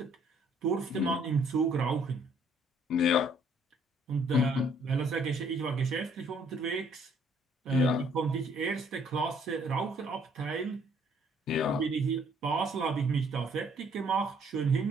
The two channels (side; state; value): both; normal; correlation 0.63